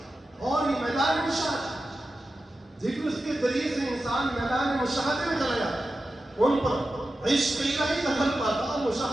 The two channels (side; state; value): both; normal; correlation 0.92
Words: اور یہ میدان مشاہدہ، ذکر کے ذریعے سے انسان میدان مشاہدے میں چلا جاتا ہے، ان پر عشق الہی دخل پاتا،